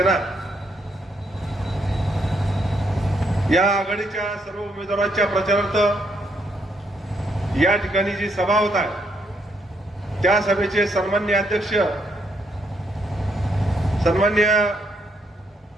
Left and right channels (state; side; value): normal; both; correlation 0.74